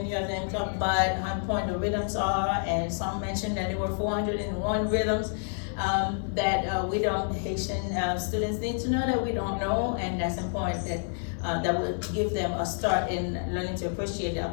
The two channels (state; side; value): silent; right; digital silence